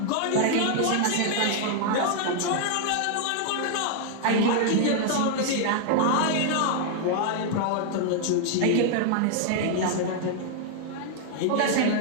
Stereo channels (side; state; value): both; different; correlation 0.00